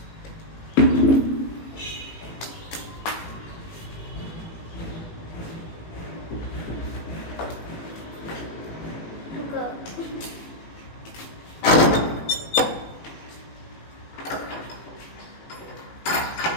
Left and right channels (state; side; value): late; right; 18 ms